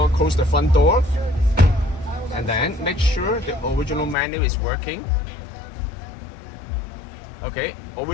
close the front door, and then make sure the original menu is working. Okay,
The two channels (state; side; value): drops out; right; at 4.2 s